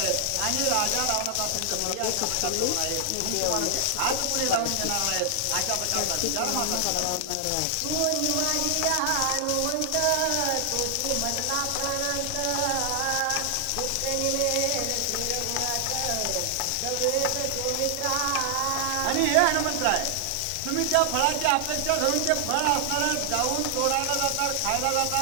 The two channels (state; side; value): different; both; correlation 0.00